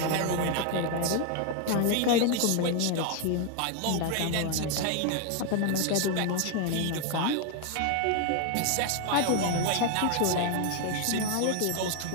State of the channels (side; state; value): both; different; correlation 0.01